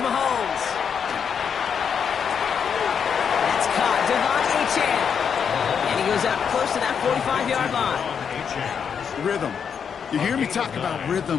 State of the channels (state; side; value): quieter; right; 7.1 dB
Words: Mahomes. And he goes out close to that 45-yard line. Rhythm. You hear me talk about